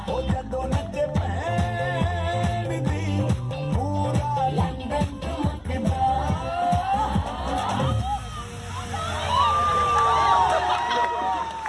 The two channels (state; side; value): identical; both; correlation 1.00